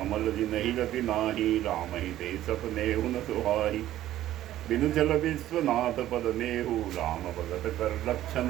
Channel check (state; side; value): quieter; left; 13.5 dB